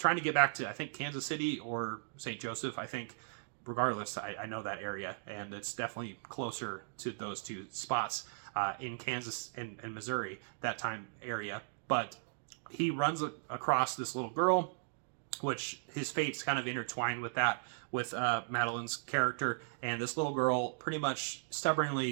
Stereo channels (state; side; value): silent; left; digital silence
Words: to get back to, I think, Kansas City or St. Joseph, I think. Regardless, I know that area, and it's definitely closer to those two spots in Kansas and Missouri, that time area. But he runs across this little girl, which his fate's kind of intertwined with that, with Madeline's character, and this little girl pretty much